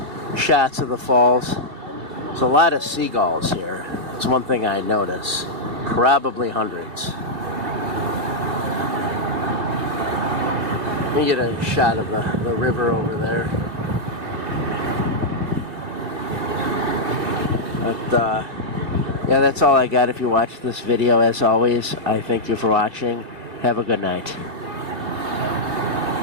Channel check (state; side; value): late; left; 2.6 ms